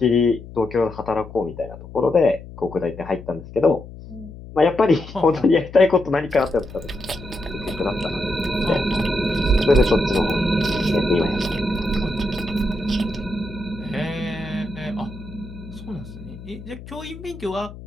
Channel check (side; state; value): left; noise; hum, 15 dB below the sound